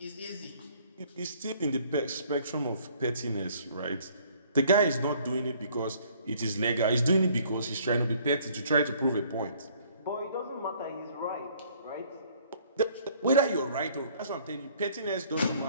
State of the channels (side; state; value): both; inverted; correlation -0.59